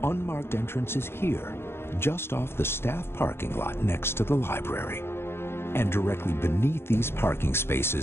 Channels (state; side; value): late; right; 0.12 ms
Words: unmarked entrance is here, just off the staff parking lot next to the library. And directly beneath these parking